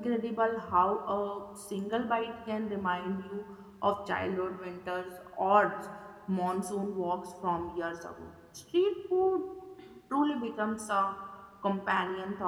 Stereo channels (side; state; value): both; identical; correlation 1.00